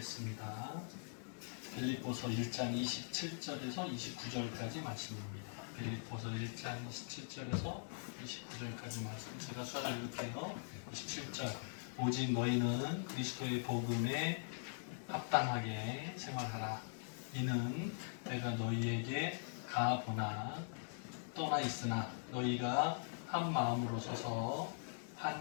보겠습니다. 빌립보서 1장 27절에서 29절까지 말씀입니다. 빌립보서 1장 27절에서 29절까지 말씀. 제가 수화를 읽을게요. 27절. 오직 너희는 그리스도의 복음에 합당하게 생활하라. 이는 내가 너희에게 가보나 떠나 있으나 너희가 한 마음으로 서서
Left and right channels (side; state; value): right; silent; digital silence